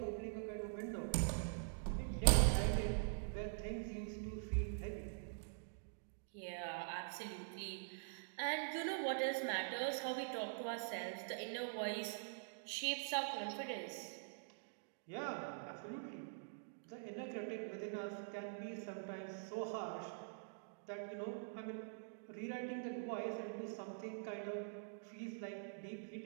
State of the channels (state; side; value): silent; left; digital silence